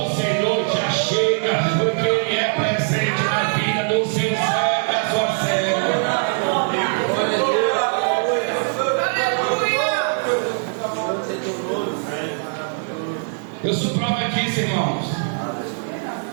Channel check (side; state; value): left; silent; 58 dB below the other